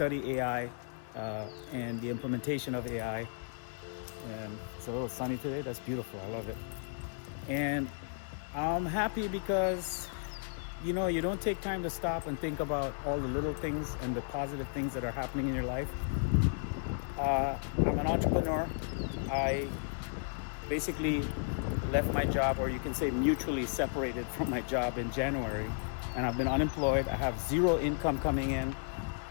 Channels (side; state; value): right; silent; 55 dB below the other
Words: AI and the implementation of AI. And it's a little sunny today. That's beautiful. I love it. And I'm happy because, you know, you don't take time to stop and think about all the little things and the positive things that are happening in your life. I'm an entrepreneur. I basically left my job, or you can say mutually separated from my job in January, and I've been unemployed. I have zero income coming in.